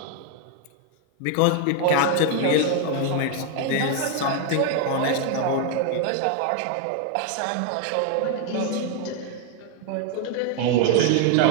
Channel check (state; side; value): different; both; correlation 0.00